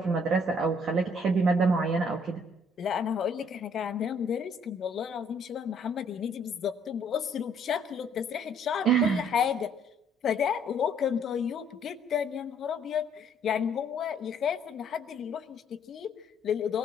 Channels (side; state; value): both; normal; correlation 0.63